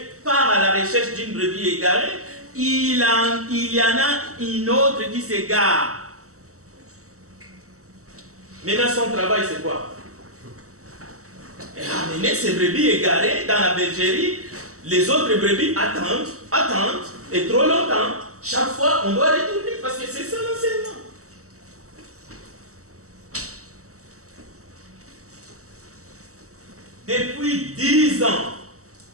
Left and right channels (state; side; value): late; left; 0.65 ms